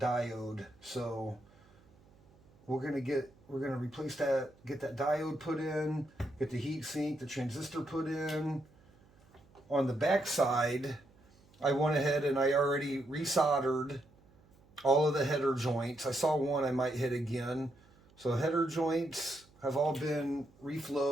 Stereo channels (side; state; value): right; noise; hum, 29 dB below the sound